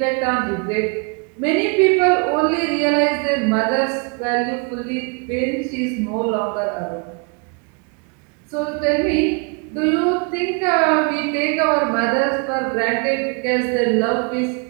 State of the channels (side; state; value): left; quieter; 35.4 dB